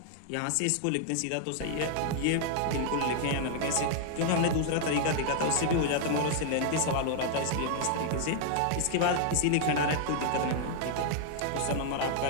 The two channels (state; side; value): different; both; correlation 0.00